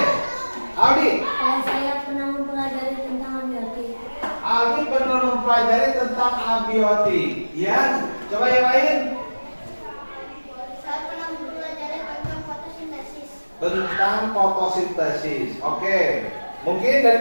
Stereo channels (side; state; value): both; inverted; correlation -1.00